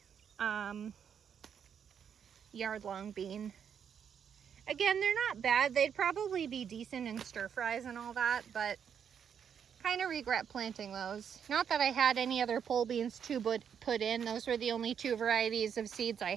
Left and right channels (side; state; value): left; quieter; 7.8 dB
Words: yard-long bean. Again, they're not bad. They'd probably be decent in stir fries and all that, but kind of regret planting those. Not that I had any other pole beans to put in. Those were the only two varieties of seeds I